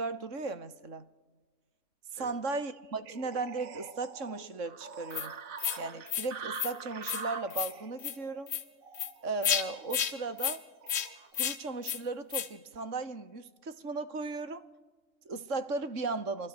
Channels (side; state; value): left; late; 3.1 ms